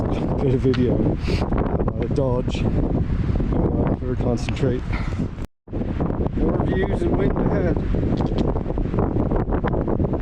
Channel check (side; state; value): both; identical; correlation 1.00